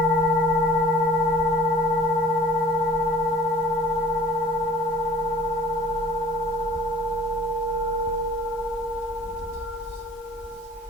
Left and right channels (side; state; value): both; normal; correlation 0.49